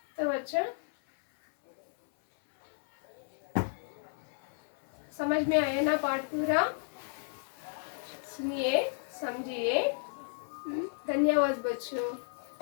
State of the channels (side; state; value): right; silent; 56 dB below the other